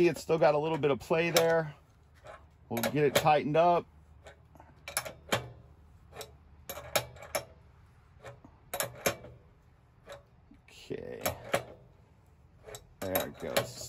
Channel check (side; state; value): both; identical; correlation 1.00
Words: it's still got a little bit of play there. We'll get it tightened up. Okay. There it goes.